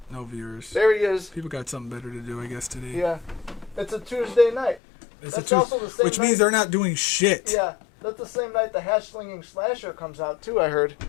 No viewers. There he is. People got something better to do, I guess, today. Yeah, it's a Tuesday night. Which means they're not doing shit. Yeah, that's the same night the Hash Slinging Slasher comes out too. I heard.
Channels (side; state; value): right; drops out; at 4.8 s